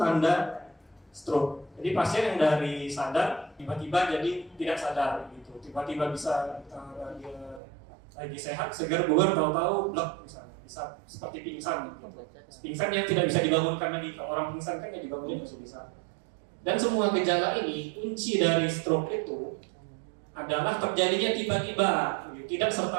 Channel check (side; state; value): left; drops out; at 7.6 s